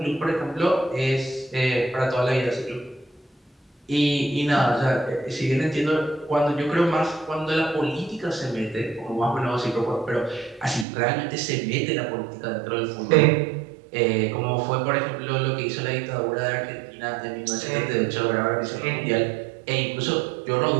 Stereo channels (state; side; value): drops out; left; at 10.9 s